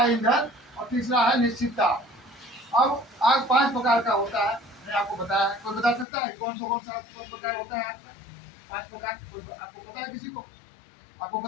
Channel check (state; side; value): drops out; right; at 6.1 s